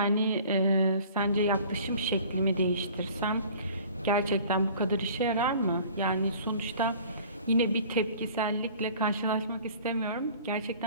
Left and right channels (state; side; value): inverted; both; correlation -0.48